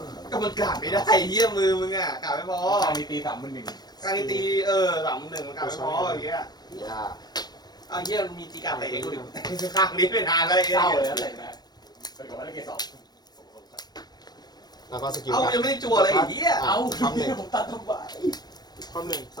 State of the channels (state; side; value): late; right; 0.19 ms